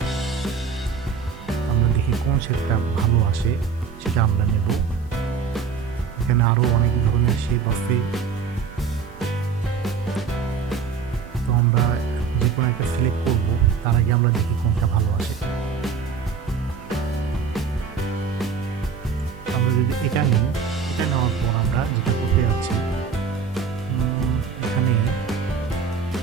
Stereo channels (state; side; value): quieter; left; 5.9 dB